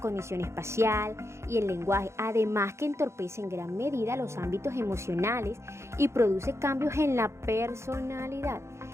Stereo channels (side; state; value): left; late; 0.13 ms